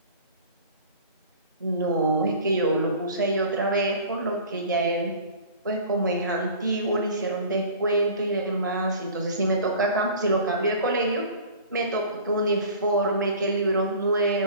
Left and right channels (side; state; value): both; inverted; correlation -0.43